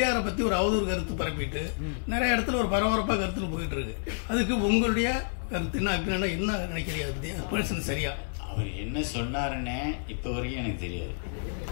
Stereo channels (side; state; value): right; silent; 58 dB below the other